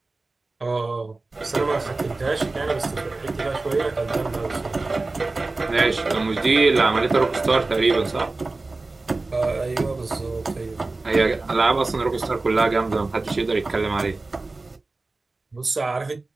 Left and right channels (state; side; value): quieter; left; 3.4 dB